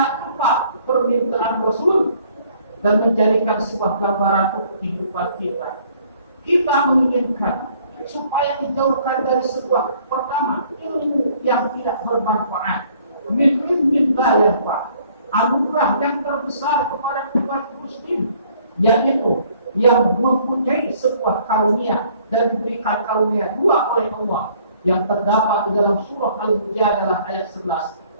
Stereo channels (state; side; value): inverted; both; correlation -0.60